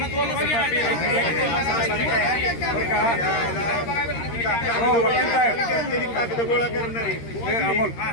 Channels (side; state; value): right; late; 13 ms